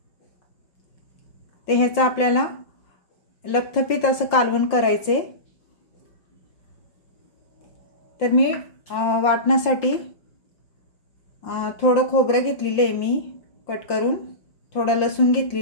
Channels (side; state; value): right; late; 5.7 ms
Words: ते ह्याचा आपल्याला लपथपीत असं कालवण करायचे. तर मी वाटण्यासाठी थोडं खोबरं घेतलेलं आहे मी कट करून, थोडा लसूण